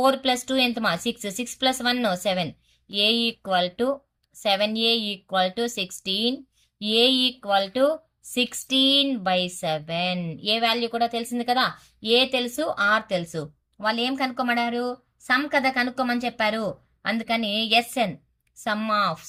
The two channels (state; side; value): identical; both; correlation 1.00